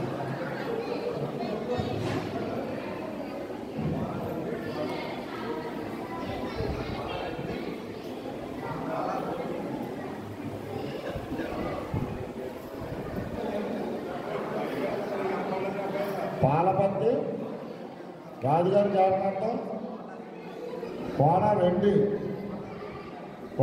పాలపత్తి రాజుగారి జాతకంతో కోన వెండి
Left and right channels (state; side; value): identical; both; correlation 1.00